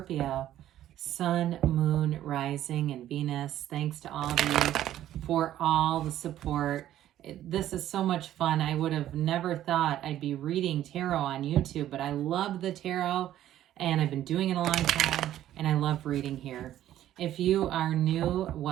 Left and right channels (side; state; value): left; quieter; 12.5 dB